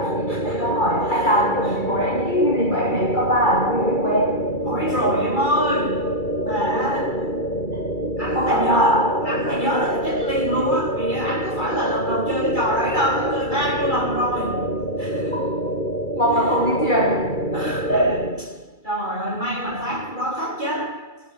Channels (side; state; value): right; late; 2.3 ms